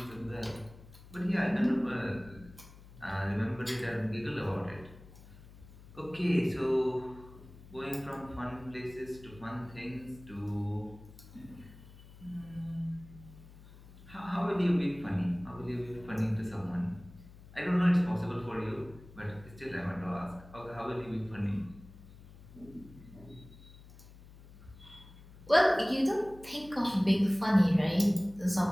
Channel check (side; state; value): left; noise; hum, 19 dB below the sound